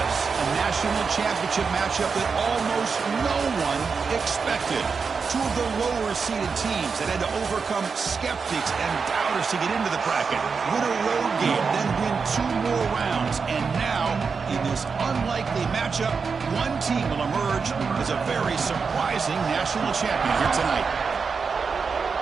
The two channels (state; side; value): quieter; left; 5.3 dB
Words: a national championship matchup that almost no one expected. Two of the lower-seeded teams that had to overcome skeptics and doubters to get into the bracket, win a road game, then win 2 more rounds. And now, in this unlikely matchup, one team will emerge as a very surprising national champion here tonight.